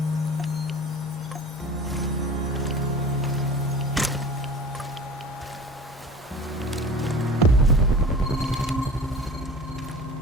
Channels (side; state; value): both; normal; correlation 0.39